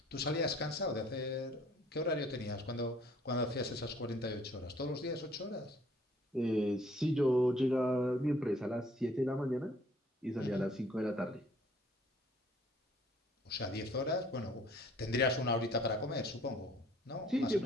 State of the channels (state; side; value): normal; both; correlation 0.57